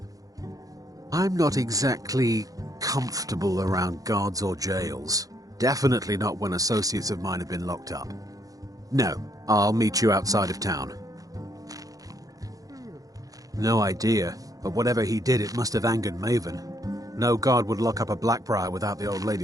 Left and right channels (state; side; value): late; left; 0.17 ms